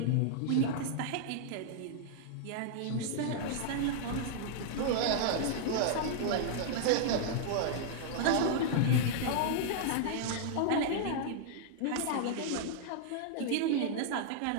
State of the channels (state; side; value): different; both; correlation -0.01